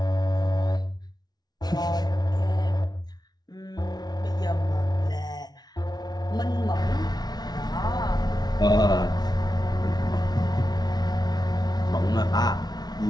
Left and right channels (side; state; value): right; late; 0.19 ms